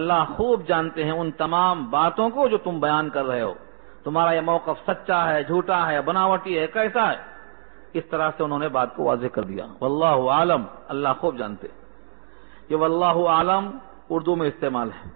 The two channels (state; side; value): silent; left; 63 dB below the other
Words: خوب جانتے ہیں ان تمام باتوں کو جو تم بیان کر رہے ہو. تمہارا یہ موقف سچا ہے، جھوٹا ہے، بناوٹی ہے، کیسا ہے. اس طرح سے انہوں نے بات کو واضح کر دیا. واللہ عالم، اللہ خوب جانتے. یہ واللہ عالم اردو میں استعمال ہے.